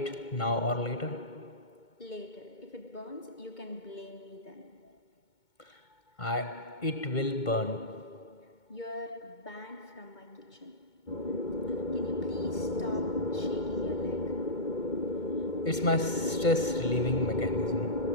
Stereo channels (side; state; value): right; late; 2.2 ms